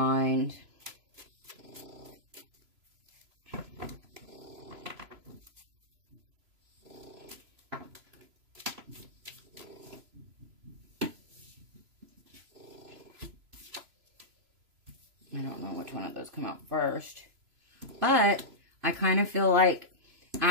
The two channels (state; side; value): late; left; 3.0 ms